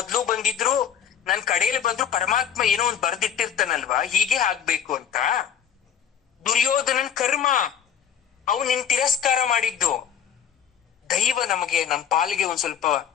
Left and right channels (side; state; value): right; quieter; 8.5 dB